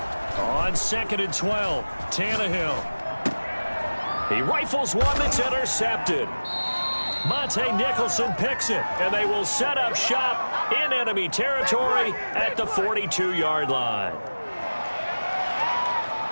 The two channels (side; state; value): both; inverted; correlation -1.00